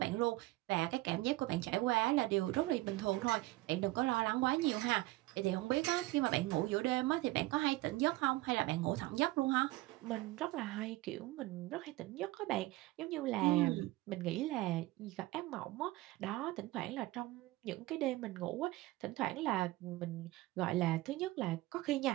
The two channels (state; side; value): quieter; left; 19.1 dB